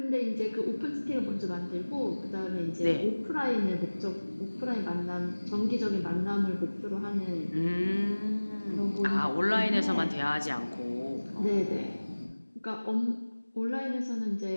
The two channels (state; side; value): inverted; both; correlation -1.00